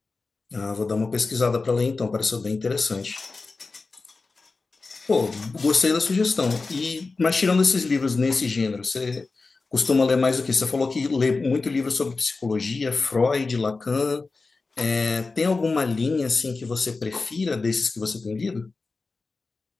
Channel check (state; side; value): quieter; right; 3.9 dB